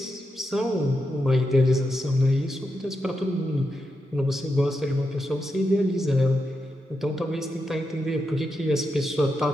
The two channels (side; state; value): both; normal; correlation 0.86